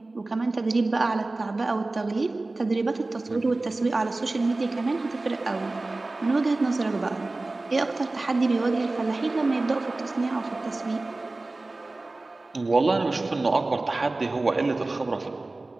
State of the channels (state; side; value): quieter; left; 3.1 dB